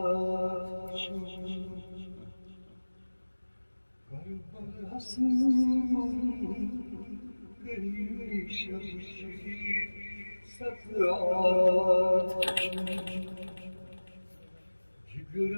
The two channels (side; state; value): both; inverted; correlation -1.00